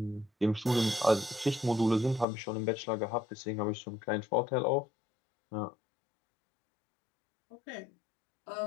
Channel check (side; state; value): right; drops out; at 2.2 s